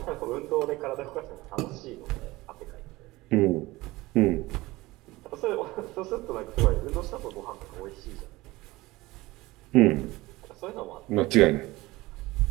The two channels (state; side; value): quieter; left; 19.9 dB